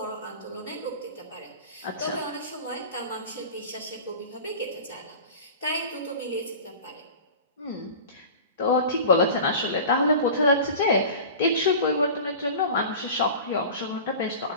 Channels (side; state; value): both; inverted; correlation -0.36